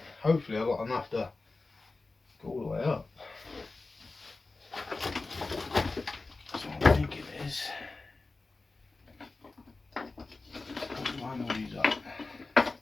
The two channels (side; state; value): right; quieter; 3.5 dB